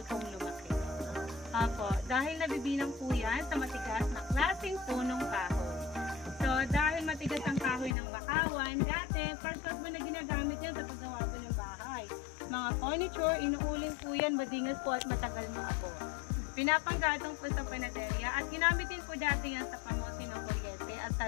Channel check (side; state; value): right; drops out; at 8.0 s